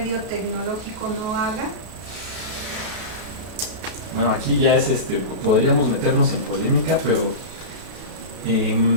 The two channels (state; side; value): late; left; 33 ms